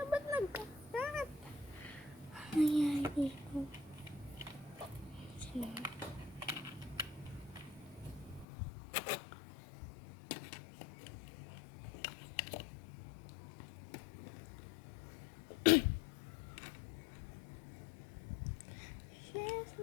ba't nagkakat? Ano nangyari dito? Sige. She's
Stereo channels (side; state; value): right; drops out; at 8.5 s